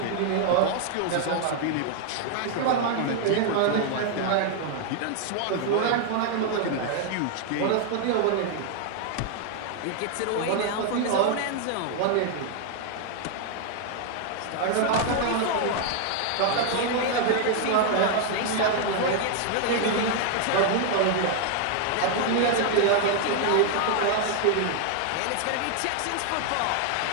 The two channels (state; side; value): different; both; correlation 0.00